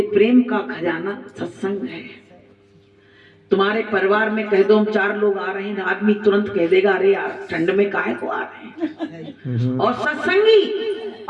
प्रेम का खजाना सत्संग है। तुम्हारे परिवार में कह दो हम 4 लोग आ रहे हैं, आदमी तुरंत कह देगा अरे यार ठंड में काहे को आ रहे हैं। और सत्संगी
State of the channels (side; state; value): both; identical; correlation 1.00